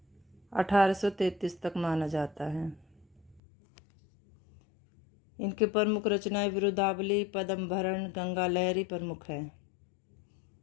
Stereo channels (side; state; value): right; drops out; at 3.4 s